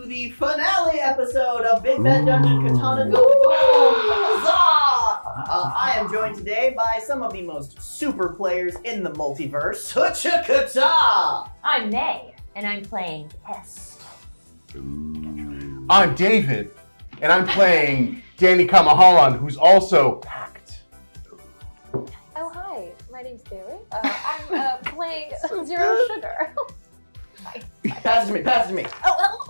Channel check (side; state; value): both; inverted; correlation -1.00